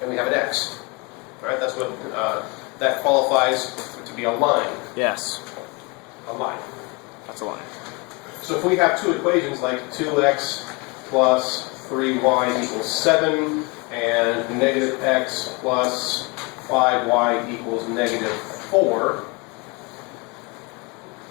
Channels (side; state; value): right; quieter; 28.7 dB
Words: and we have an x. Right? That's what that qualifies to be a line. Yes. A line. That's a line. So if we have two equations like 2x plus 3y equals 7 and negative x plus 5y equals negative 4,